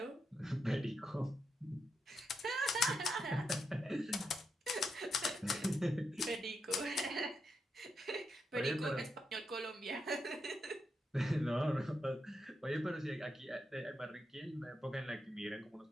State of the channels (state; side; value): normal; both; correlation 0.83